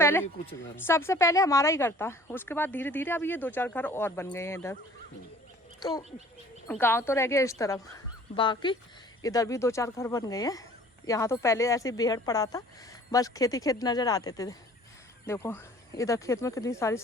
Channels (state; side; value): normal; both; correlation 0.51